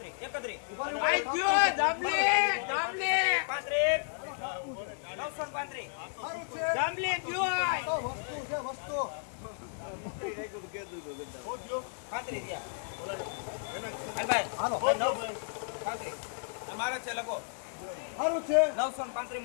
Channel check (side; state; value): right; silent; digital silence